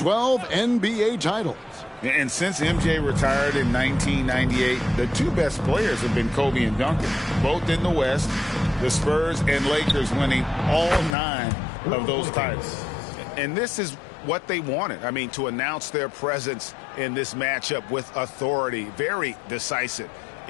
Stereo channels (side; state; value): right; drops out; at 11.2 s